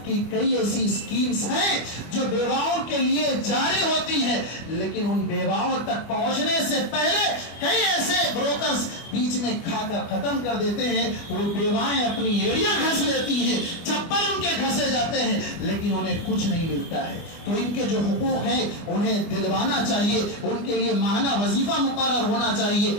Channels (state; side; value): late; right; 24 ms